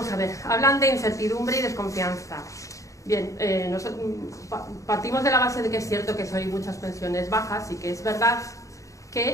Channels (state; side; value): late; right; 0.16 ms